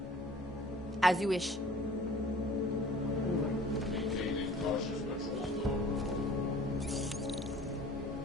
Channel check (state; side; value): normal; both; correlation 0.49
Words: As you wish.